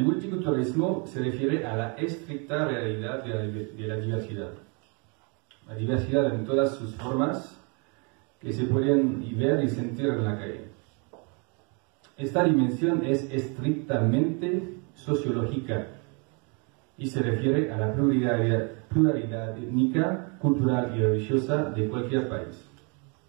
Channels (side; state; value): left; quieter; 34.7 dB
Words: multiculturalismo se refiere a la estricta realidad de la diversidad. La diversidad en todas sus formas que se pueden ver y sentir en la calle. Esta dimensión es estrictamente sociológica y se refiere a la pluralidad étnica, cultural y religiosa de cualquier país.